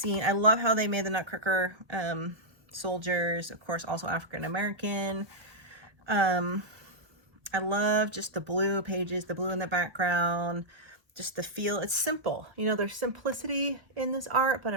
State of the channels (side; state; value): left; late; 1.4 ms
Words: I love how they made the Nutcracker soldiers, of course, also African-American. I love just the blue pages, the blue in the background, just the feel. It's simple. You know, there's simplicity in this art, but